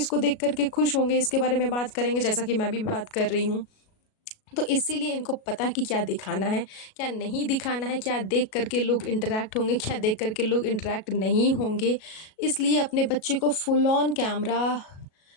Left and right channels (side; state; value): right; late; 37 ms